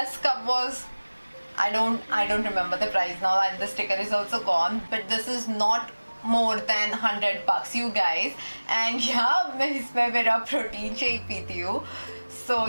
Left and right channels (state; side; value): inverted; both; correlation -1.00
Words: cup was, I don't remember the price now, and the sticker is also gone, but this is not more than $100, you guys. And yeah, मैं इसमें मेरा protein shake पीती हूँ. So